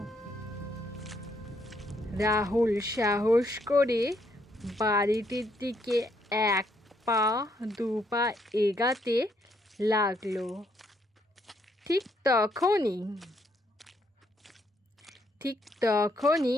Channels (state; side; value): normal; both; correlation 0.73